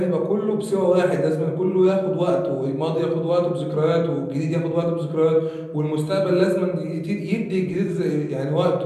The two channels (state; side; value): identical; both; correlation 1.00